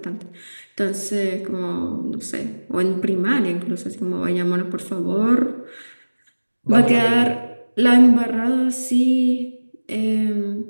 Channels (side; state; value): both; inverted; correlation -1.00